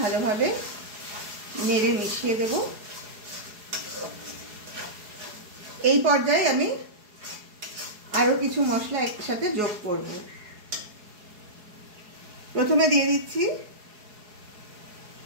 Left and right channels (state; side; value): late; left; 4.8 ms